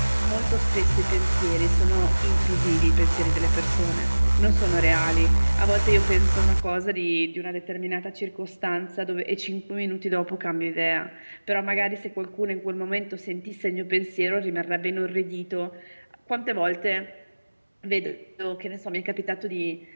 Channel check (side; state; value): both; inverted; correlation -1.00